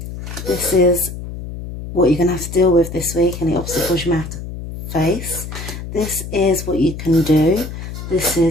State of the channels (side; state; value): left; noise; hum, 9 dB below the sound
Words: This is what you're going to have to deal with this week and the obstacles you may have to face. This is what you can do, this